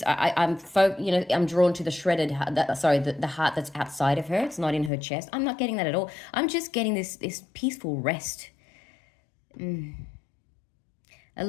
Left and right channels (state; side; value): drops out; right; at 4.9 s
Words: I'm drawn to the shredded, the heart that's outside of her. It's not in her chest. I'm not getting that at all. I'm just getting this peaceful rest. A